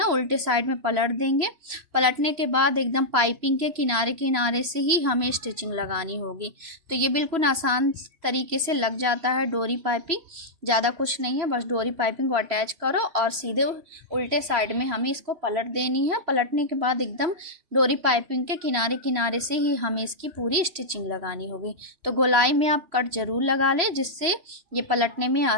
उल्टे साइड में पलट देंगे। पलटने के बाद एकदम पाइपिंग के किनारे किनारे से ही हमें स्टिचिंग लगानी होगी। तो ये बिल्कुल आसान तरीके से लग जाता है डोरी पाइपिंग, ज़्यादा कुछ नहीं है, बस डोरी पाइपिंग को अटैच करो और सीधे उल्टे साइड में हमें इसको पलट देनी है। पलटने के बाद एकदम डोरी पाइपिंग के किनारे किनारे से ही हमें इसकी पूरी स्टिचिंग लगानी होगी। तो गोलाई में आप कट ज़रूर लगा लें, जिससे ये पलटने में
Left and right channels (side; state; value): left; late; 3.0 ms